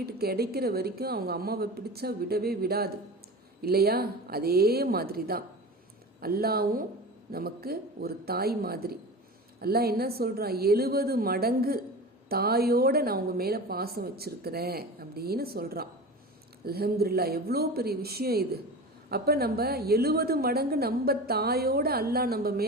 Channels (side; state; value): both; normal; correlation 0.32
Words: கிடைக்கிற வரைக்கும் அவங்க அம்மாவை பிடிச்சா விடவே விடாது இல்லையா? அதே மாதிரி தான் அல்லாவும் நமக்கு ஒரு தாய் மாதிரி. அல்லாஹ் என்ன சொல்கிறான்? 70 மடங்கு தாயோட நான் உங்கள் மேலே பாசம் வச்சுருக்கிறேன் அப்படின்னு சொல்கிறான். அல்ஹம்துலில்லாஹ், எவ்வளோ பெரிய விஷயம் இது. அப்போ நம்ம 70 மடங்கு நம்ம தாயோட அல்லாஹ் நம்ம